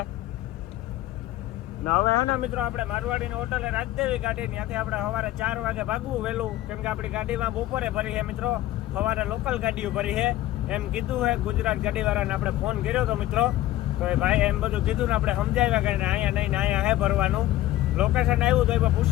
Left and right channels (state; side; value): quieter; right; 14.9 dB